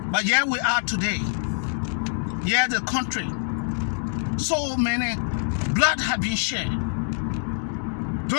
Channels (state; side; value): silent; right; digital silence